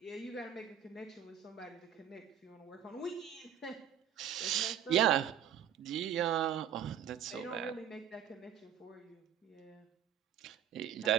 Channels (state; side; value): quieter; left; 9.4 dB